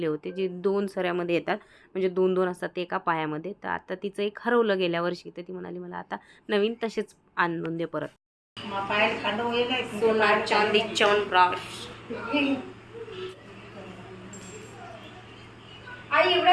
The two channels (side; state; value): both; identical; correlation 1.00